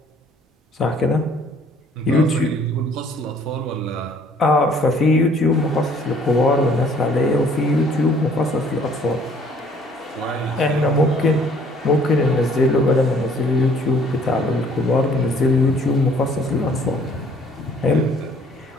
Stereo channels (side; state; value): both; normal; correlation 0.58